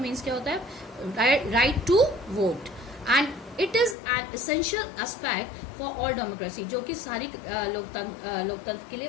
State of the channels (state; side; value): drops out; right; at 4.0 s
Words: क्या होता है, right to vote, and it is an essential aspect for all democracy, जो कि सारी लोकतंत्र के लिए